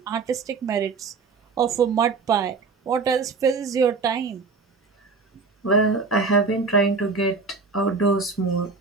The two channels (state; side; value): quieter; left; 4.5 dB